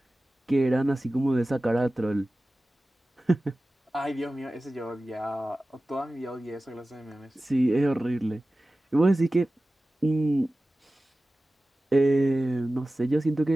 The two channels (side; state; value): both; normal; correlation 0.96